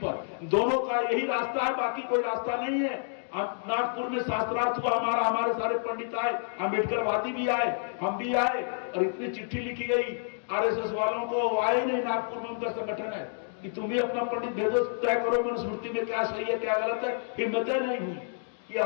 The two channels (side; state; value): right; silent; digital silence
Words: दोनों का यही रास्ता है, बाकी कोई रास्ता नहीं है। नागपुर में शास्त्रार्थ हुआ हमारा, हमारे सारे पंडित आए, अम्बेडकरवादी भी आए, हम भी आए, और इतनी चिट्ठी लिखी गई आरएसएस वालों को। वो आए नहीं, नागपुर में उनका संगठन है कि तुम भी अपना पंडित भेजो, तय करो मनुस्मृति में क्या सही है क्या गलत है। हिम्मतें नहीं हुई कि